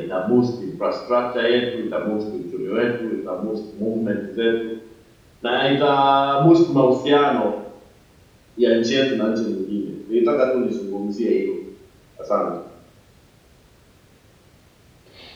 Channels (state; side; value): identical; both; correlation 1.00